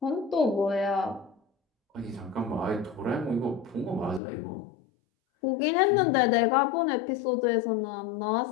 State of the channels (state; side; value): drops out; right; at 4.2 s